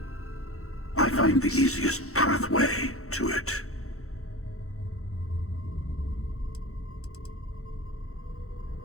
I find the easiest pathway to it.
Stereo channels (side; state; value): right; late; 0.64 ms